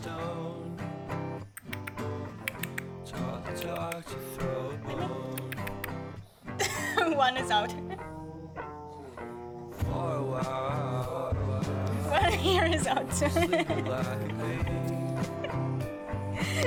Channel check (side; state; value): both; identical; correlation 1.00